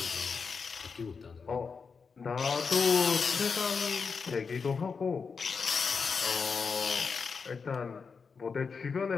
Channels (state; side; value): quieter; right; 5.3 dB